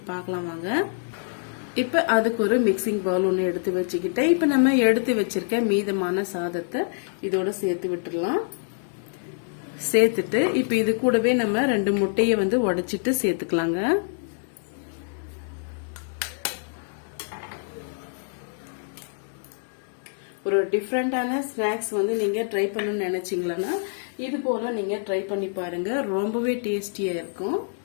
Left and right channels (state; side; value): silent; right; digital silence